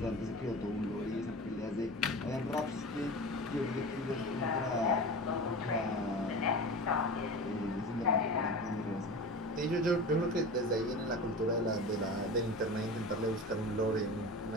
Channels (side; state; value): both; normal; correlation 0.31